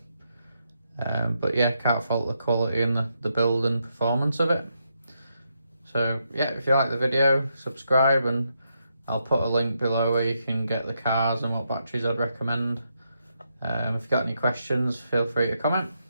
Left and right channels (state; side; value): inverted; both; correlation -0.81